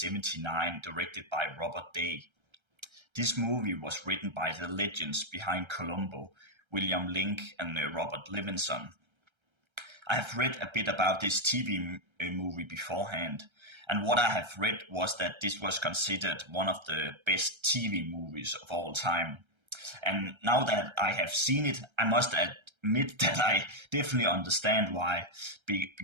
directed by Robert Day. This movie was written by the legends behind Columbo, William Link and Robert Levinson. I have read a bit about this TV movie beforehand, and what I have read was that this was considered one of the best TV movies of all time. And now that I have seen it, I must admit that I definitely understand why,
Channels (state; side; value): late; left; 1.3 ms